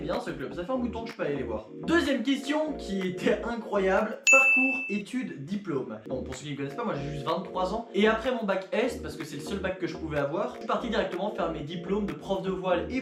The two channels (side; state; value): both; identical; correlation 1.00